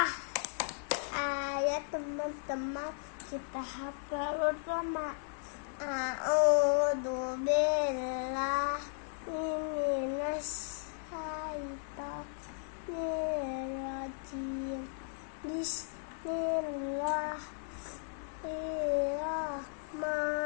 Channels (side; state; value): right; silent; digital silence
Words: Ayo teman-teman kita hafal bersama. A'udzu billahi minas syaitonir rajim.